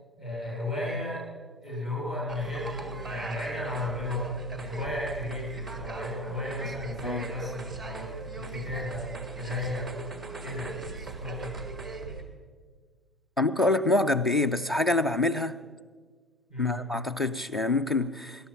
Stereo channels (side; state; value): both; normal; correlation 0.37